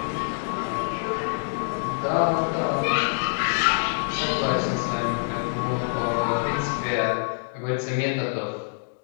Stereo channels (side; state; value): right; silent; 61 dB below the other